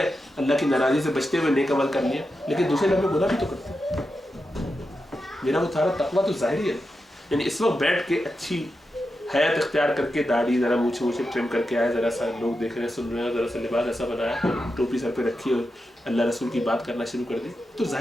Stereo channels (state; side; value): normal; both; correlation 0.89